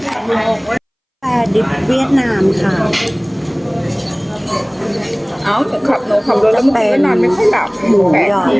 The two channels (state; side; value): identical; both; correlation 1.00